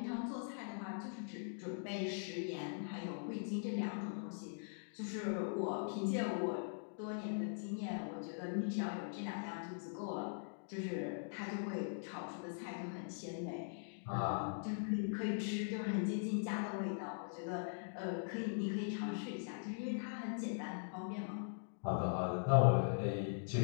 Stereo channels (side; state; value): right; silent; digital silence